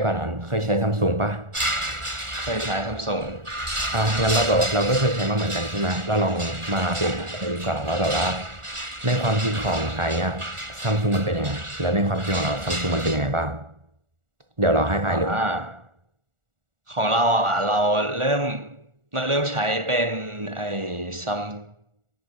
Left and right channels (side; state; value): left; late; 1.4 ms